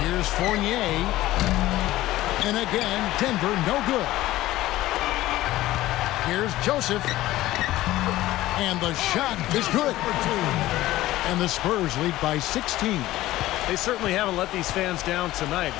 Fournier. And again, Denver no good. Here's Joseph. And the shot is good. And the Spurs lead by 16. They certainly haven't let these fans down tonight.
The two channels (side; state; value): right; quieter; 16.1 dB